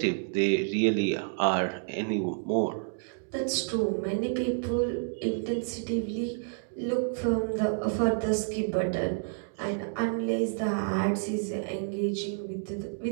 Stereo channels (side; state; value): left; silent; digital silence